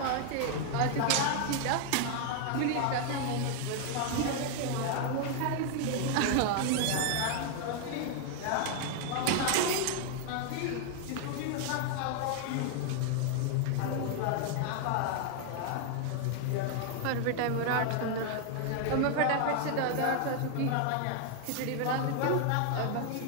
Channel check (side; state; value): both; different; correlation 0.00